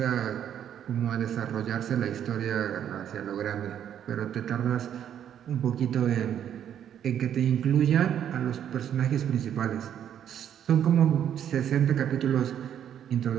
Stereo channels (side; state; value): left; quieter; 9.7 dB